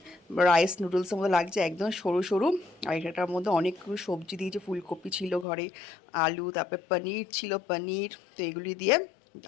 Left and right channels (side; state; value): right; drops out; at 5.5 s